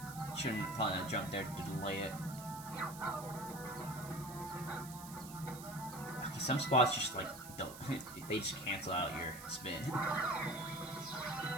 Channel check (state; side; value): noise; right; hiss, 14 dB below the sound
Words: Shouldn't probably not jump there to delay it. Okay, some spots just like don't. They just cancel out your spin. I